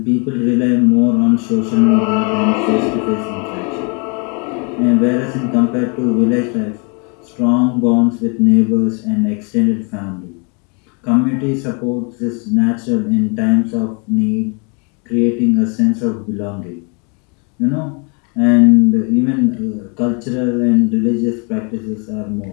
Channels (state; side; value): quieter; right; 35.1 dB